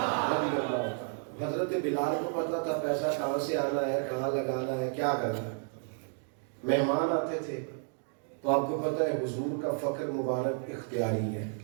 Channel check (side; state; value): left; silent; 57 dB below the other